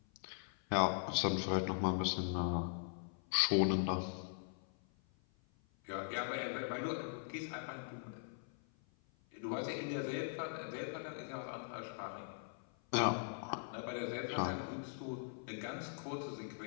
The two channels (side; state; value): right; silent; 51 dB below the other